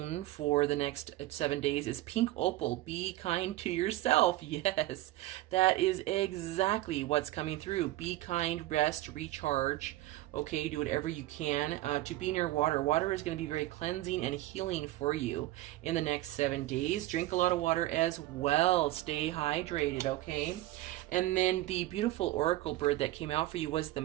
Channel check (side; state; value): left; quieter; 16.5 dB